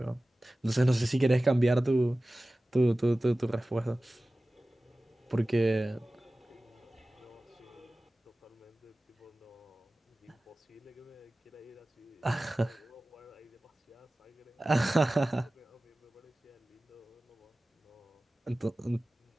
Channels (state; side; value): normal; both; correlation 0.97